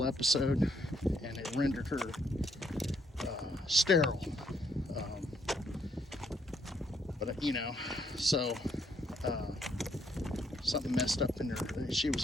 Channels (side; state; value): both; normal; correlation 0.71